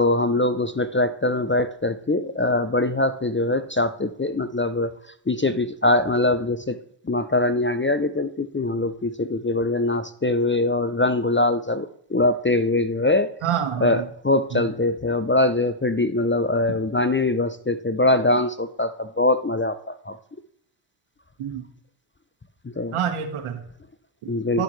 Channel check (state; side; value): normal; both; correlation -0.09